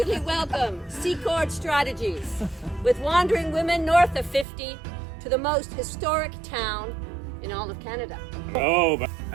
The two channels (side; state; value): left; drops out; at 4.5 s